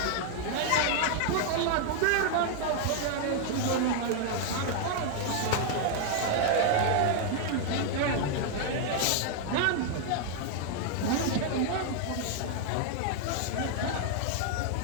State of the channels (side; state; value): both; different; correlation 0.00